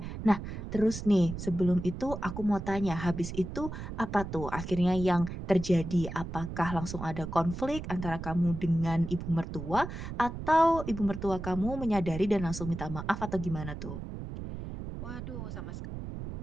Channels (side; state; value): right; noise; rumble, 8 dB below the sound